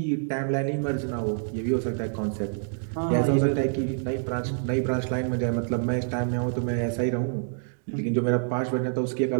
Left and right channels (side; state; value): left; silent; digital silence